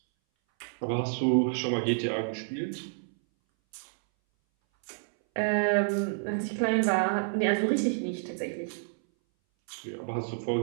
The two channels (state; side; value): silent; left; 58 dB below the other